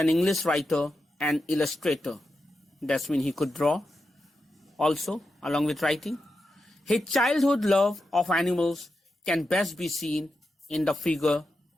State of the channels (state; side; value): normal; both; correlation 0.89